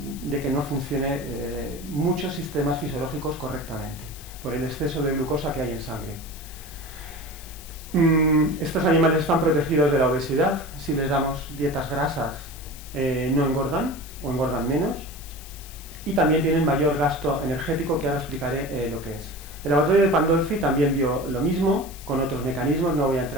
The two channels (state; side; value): noise; left; hiss, 17 dB below the sound